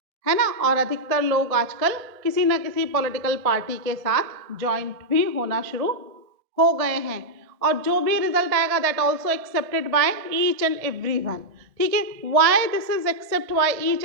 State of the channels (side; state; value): left; late; 1.7 ms